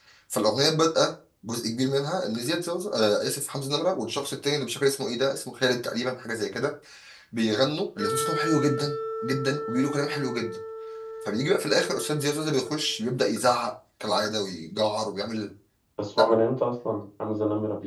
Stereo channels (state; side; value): identical; both; correlation 1.00